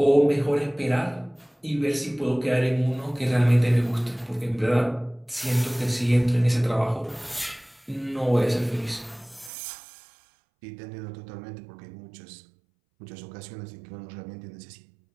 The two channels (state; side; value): drops out; left; at 9.5 s